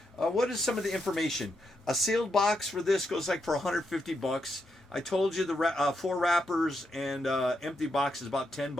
What is some of the information? A sealed box for this goes like for $150. I told you the 4 wrappers and empty box is about $10.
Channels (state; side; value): normal; both; correlation 0.82